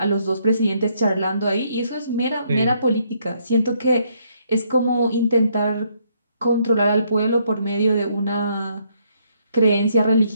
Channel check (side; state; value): both; inverted; correlation -0.71